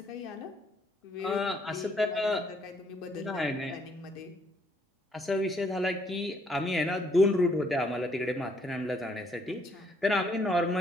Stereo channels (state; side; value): normal; both; correlation 0.69